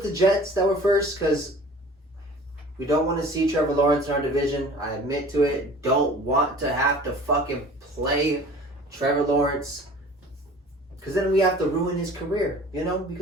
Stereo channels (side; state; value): both; normal; correlation 0.45